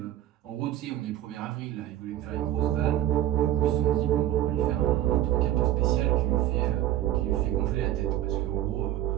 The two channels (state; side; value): quieter; left; 13.0 dB